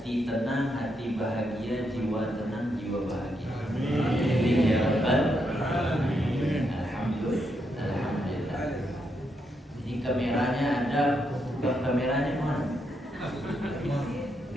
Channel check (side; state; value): both; normal; correlation 0.80